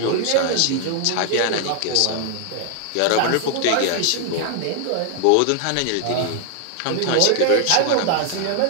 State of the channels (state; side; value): different; both; correlation 0.00